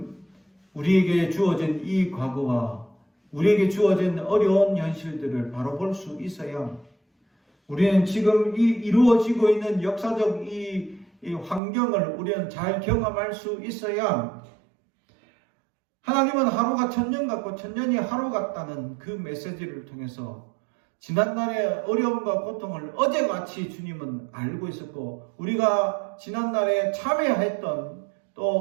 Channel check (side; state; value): left; drops out; at 11.6 s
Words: 우리에게 주어진 이 과거와 우리에게 주어진 어려운 현실들을 바로 볼 수 있어야 우리는 지금 이 이루어지고 있는 역사적 이 환경을 우리는 잘 경험할 수 있어야 하나님은 하루가 천년 같고 천년이 하루 같다는 그 메시지를 통해서 지난날의 어려움과 고통을 어제같이 주님은 알고 있었고, 우리가 지난날에 참회했던,